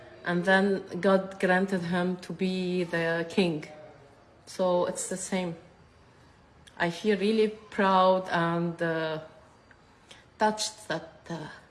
And then God granted him to be the king. So it's the same. I feel really proud and touched that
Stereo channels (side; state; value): both; identical; correlation 1.00